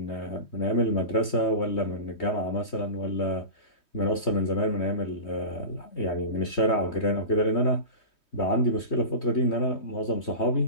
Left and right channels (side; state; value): right; late; 3.2 ms